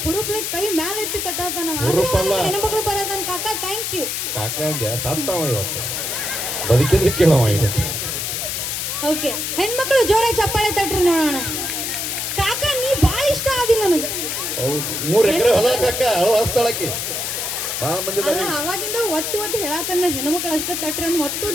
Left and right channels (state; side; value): noise; left; hiss, 2 dB below the sound